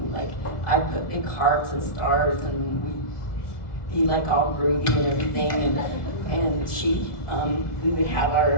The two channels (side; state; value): right; late; 1.4 ms